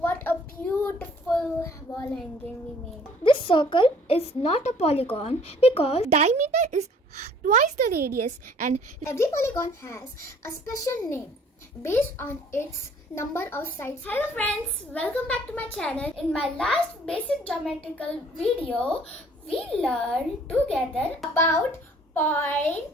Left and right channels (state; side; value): normal; both; correlation 0.56